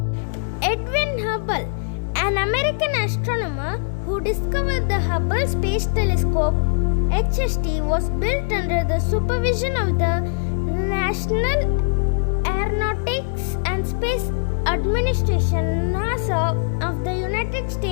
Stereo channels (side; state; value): right; silent; digital silence